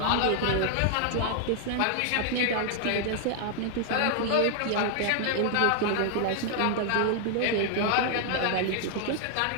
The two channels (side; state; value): both; different; correlation 0.00